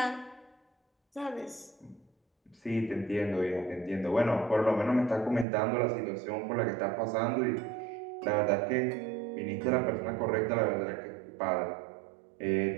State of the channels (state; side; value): drops out; left; at 5.5 s